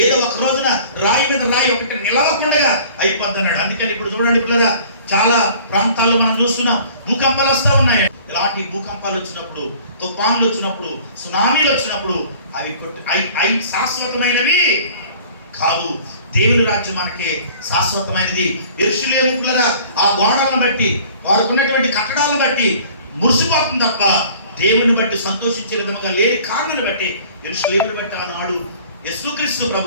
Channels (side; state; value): both; inverted; correlation -0.50